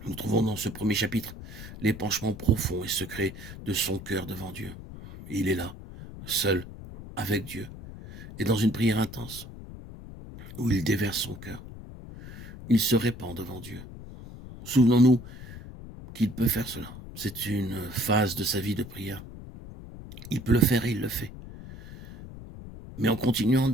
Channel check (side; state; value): left; noise; rumble, 13 dB below the sound